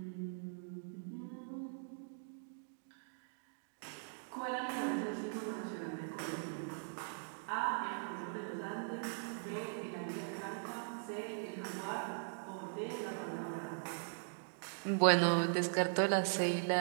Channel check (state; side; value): silent; left; digital silence